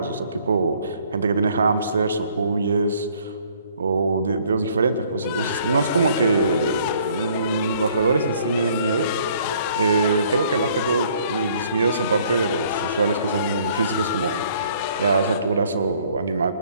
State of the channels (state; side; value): inverted; both; correlation -0.61